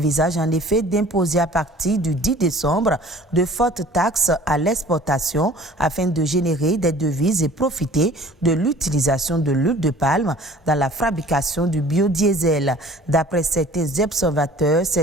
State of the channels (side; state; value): both; normal; correlation 0.48